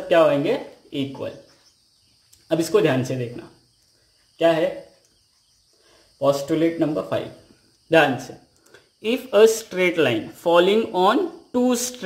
क्या होंगे, इक्वल। अब इसको ध्यान से देखना, क्या है पोस्टुलेट नंबर 5, ध्यान से। If a straight line falling on 2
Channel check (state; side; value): identical; both; correlation 1.00